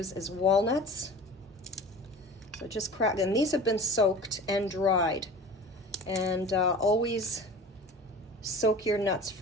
is walnuts. So just crack, and these have been soaked and dried. And always soak your nuts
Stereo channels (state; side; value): normal; both; correlation 0.38